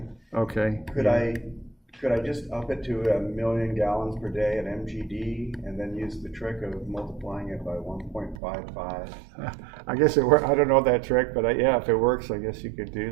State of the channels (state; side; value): drops out; left; at 8.4 s